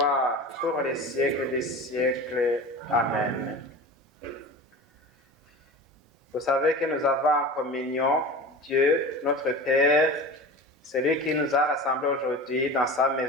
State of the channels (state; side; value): normal; both; correlation 0.33